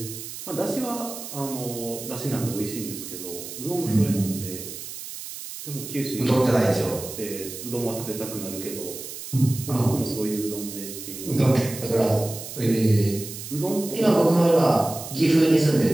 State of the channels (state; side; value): noise; right; hiss, 10 dB below the sound